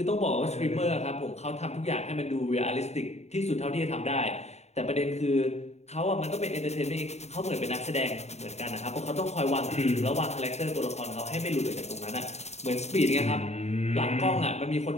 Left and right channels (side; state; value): right; late; 0.32 ms